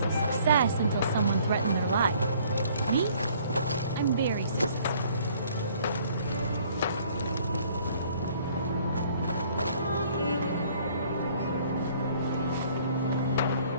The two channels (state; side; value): inverted; both; correlation -0.58